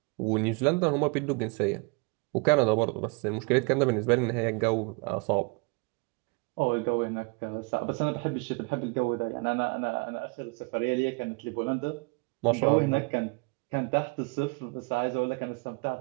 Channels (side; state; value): left; quieter; 31.1 dB